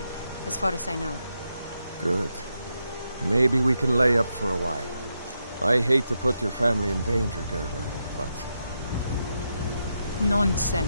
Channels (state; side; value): inverted; both; correlation -0.84